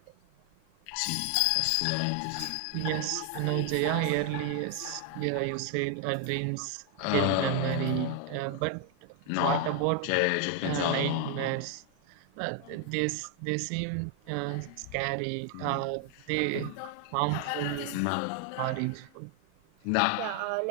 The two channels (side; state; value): both; different; correlation 0.01